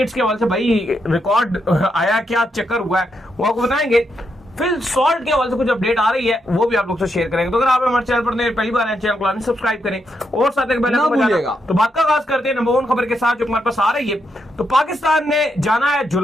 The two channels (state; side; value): normal; both; correlation 0.81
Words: के हवाले से भाई रिकॉर्ड आया, क्या चक्कर हुआ है वो आपको बताएंगे। फिल सॉल्ट के हवाले से कुछ अपडेट आ रही है वो भी आप लोग से शेयर करेंगे। तो अगर आप हमारे चैनल पर पहली बार हैं, चैनल को सब्सक्राइब करें और साथ ही बेल आइकन बजाना। तो बात का आगाज करते हैं नंबर 1 खबर के साथ जो हमारे पास आ रही है। तो पाकिस्तान ने जाना है